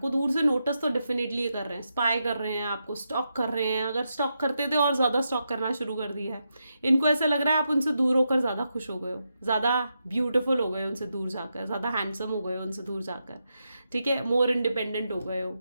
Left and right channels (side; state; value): both; inverted; correlation -0.85